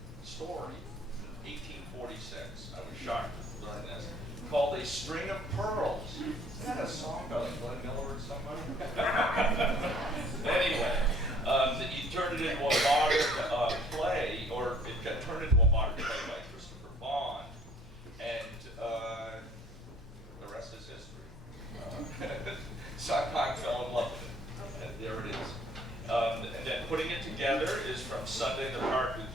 story from 1846. I was shocked to learn this. Called A String of Pearls. Isn't that a song by like Glenn Miller or somebody? Anyway, he turned it into a modern play, or it got turned into a modern play by Christopher Bond, and the rest is history. Sondheim fell in love with it, and there it is. And then putting it together is from Sunday in the Park with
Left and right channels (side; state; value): both; normal; correlation 0.57